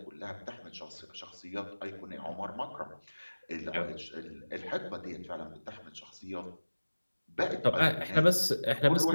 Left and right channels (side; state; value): both; inverted; correlation -1.00